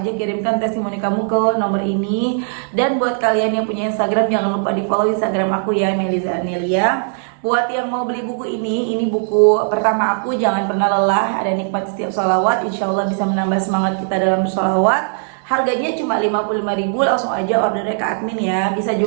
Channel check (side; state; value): left; silent; digital silence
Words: kirimkan testimoni kamu ke nomor ini. Dan buat kalian yang punya Instagram, jangan lupa di follow Instagram aku ya, Meliza Anelia. Buat yang mau beli buku ini buku pertama aku, Jangan Pernah Lelah, Ada Nikmat Setiap Sholawat. Insya Allah bisa menambah semangat kita dalam bersholawat. Harganya cuma 55.000, langsung aja ordernya ke admin ya. Bisa